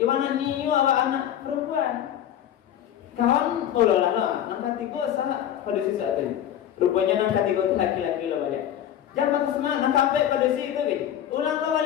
niu awak anak perempuan. Kawan lah, nampak 3 salah pada sisi itu. Rupanya nampak 3 itu laki-laki lah balik. Jangan patah semangat, nampak sampai pada sisi itu gitu. Ulang lah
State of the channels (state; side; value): quieter; right; 10.7 dB